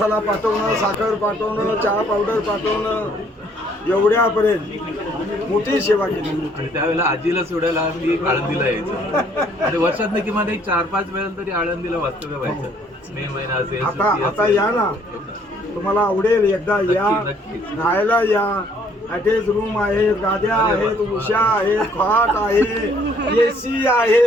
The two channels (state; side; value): normal; both; correlation 0.63